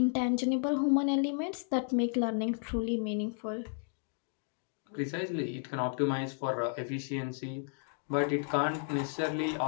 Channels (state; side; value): silent; right; 56 dB below the other